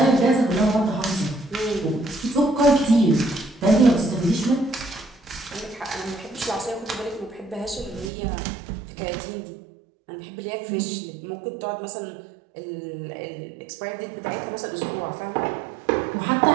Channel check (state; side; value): drops out; left; at 8.1 s